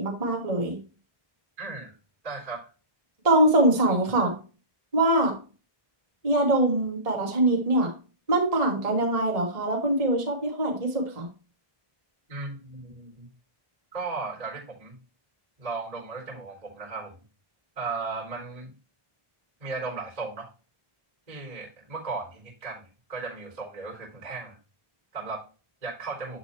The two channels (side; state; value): left; late; 1.7 ms